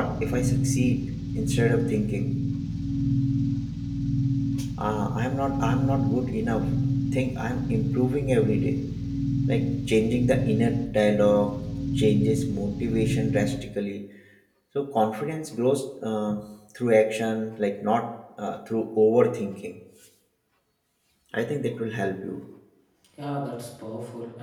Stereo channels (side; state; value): both; identical; correlation 1.00